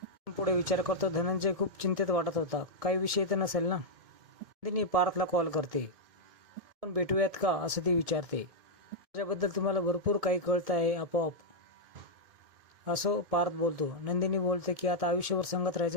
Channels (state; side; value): late; left; 2.2 ms